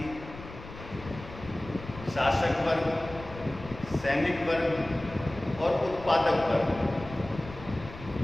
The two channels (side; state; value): left; noise; rumble, 15 dB below the sound